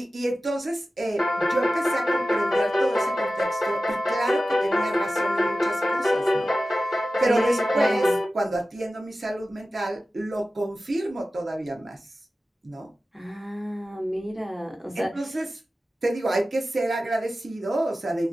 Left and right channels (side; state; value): both; normal; correlation 0.94